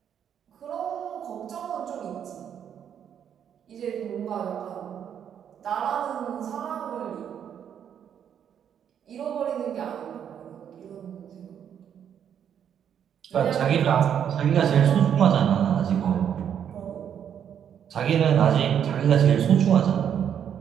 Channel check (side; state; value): left; quieter; 8.8 dB